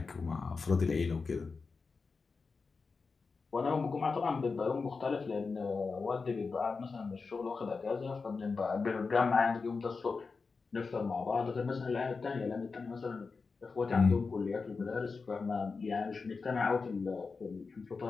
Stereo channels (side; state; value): right; quieter; 4.6 dB